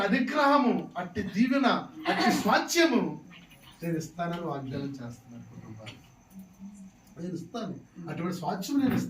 అనుగ్రహము, అట్టి దీవెన, అట్టి స్వాస్థ్యము నేను ఇస్తానని వాగ్దానం చేస్తున్నాను. కుటుంబాలు నేను ఇస్తాను, అటువంటి స్వాస్థ్యం నేను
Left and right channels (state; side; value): identical; both; correlation 1.00